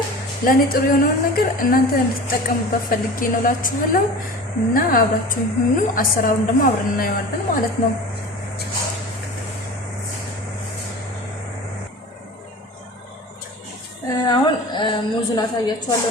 ለኔ ጥሩ የሆነውን ነገር እናንተ እንድትጠቀሙበት ፈልጌ ነው እላችኋለሁ። እና አብራችሁ ሁኑ። አሰራሩን ደግሞ አብረን እናየዋለን ማለት ነው። አሁን ሙዙን አሳያችኋለሁ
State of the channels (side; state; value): both; normal; correlation 0.36